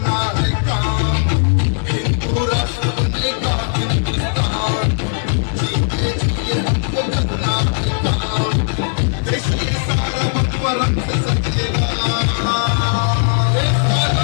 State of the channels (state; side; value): silent; right; digital silence